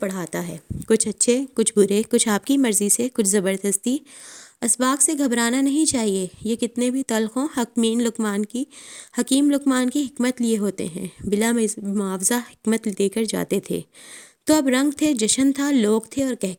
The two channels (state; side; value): identical; both; correlation 1.00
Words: ہے. کچھ اچھے، کچھ برے، کچھ آپ کی مرضی سے، کچھ زبردستی. اسباق سے گھبرانا نہیں چاہیے. یہ کتنے بھی تلخ ہوں، حکیم لقمان کی حکمت لیے ہوتے ہیں. بلا معاوضہ حکمت دے کر جاتے تھے. تو اب رنگ تھے، جشن تھا، لوگ تھے اور